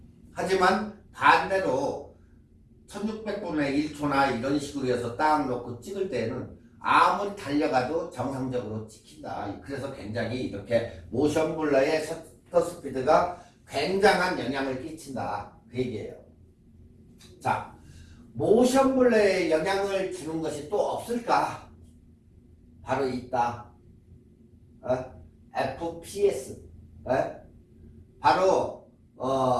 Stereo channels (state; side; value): identical; both; correlation 1.00